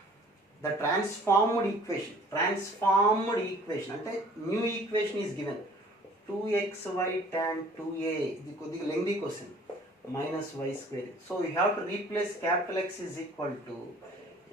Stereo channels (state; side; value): normal; both; correlation 0.52